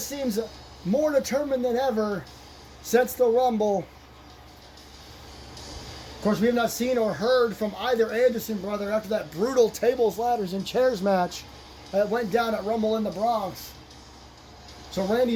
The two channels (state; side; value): identical; both; correlation 1.00